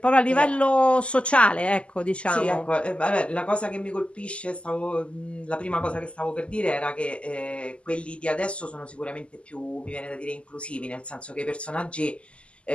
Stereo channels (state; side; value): late; right; 0.056 ms